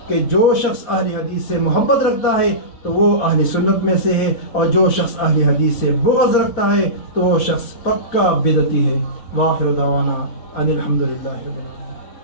کہ جو شخص اہل حدیث سے محبت رکھتا ہے تو وہ اہل سنت میں سے ہے، اور جو شخص اہل حدیث سے بغض رکھتا ہے تو وہ شخص پکا بدعتی ہے۔ وآخر دعوانا ان الحمدللہ رب العالمین۔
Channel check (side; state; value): right; late; 4.1 ms